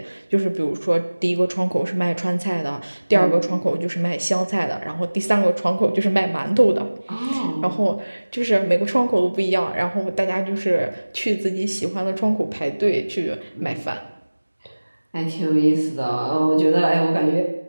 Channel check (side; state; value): both; inverted; correlation -1.00